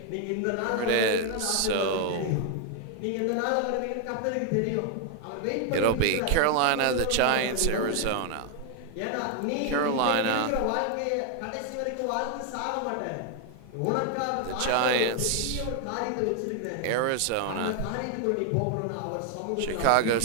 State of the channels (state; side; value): different; both; correlation 0.00